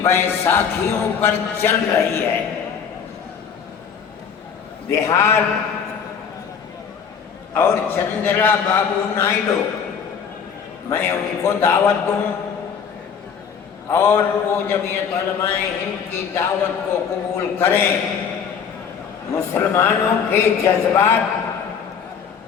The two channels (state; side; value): quieter; right; 7.0 dB